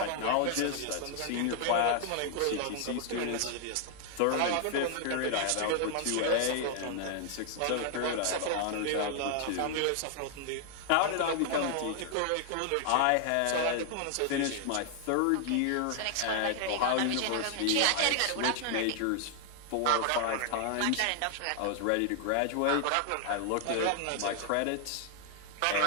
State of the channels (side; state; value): both; different; correlation 0.00